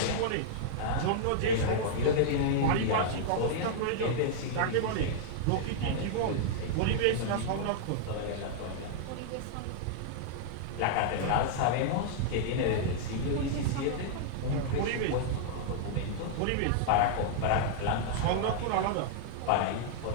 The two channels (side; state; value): both; different; correlation -0.01